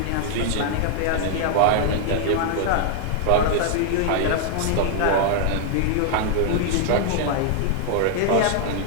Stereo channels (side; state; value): both; different; correlation 0.00